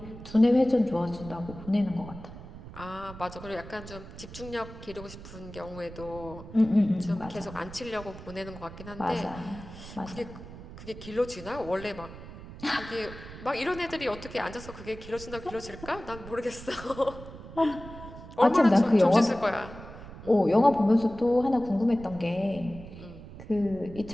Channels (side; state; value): right; noise; rumble, 14 dB below the sound